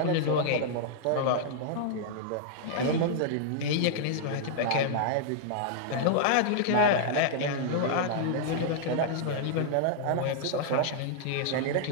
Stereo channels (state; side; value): different; both; correlation -0.01